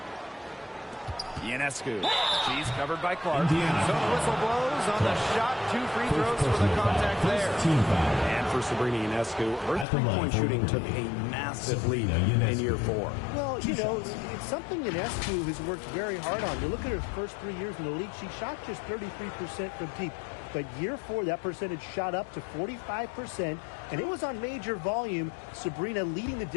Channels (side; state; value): right; drops out; at 9.9 s